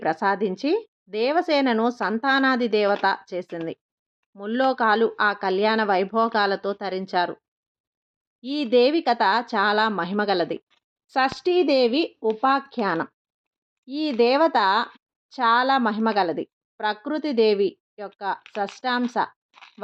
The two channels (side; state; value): both; identical; correlation 1.00